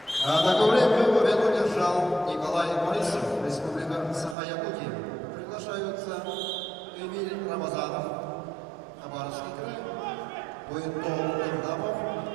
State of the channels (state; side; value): drops out; left; at 4.4 s